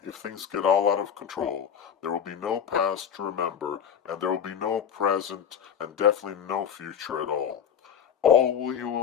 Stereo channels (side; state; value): right; quieter; 8.2 dB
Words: if things get all out of control, there will be no past to remember, and there will be no present, and definitely no future at all. All you